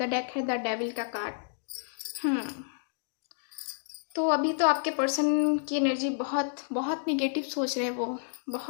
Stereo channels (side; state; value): right; silent; digital silence